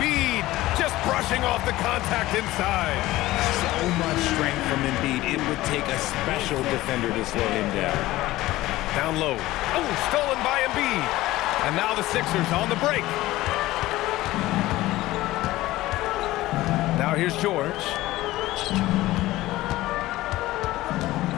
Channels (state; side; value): quieter; right; 17.1 dB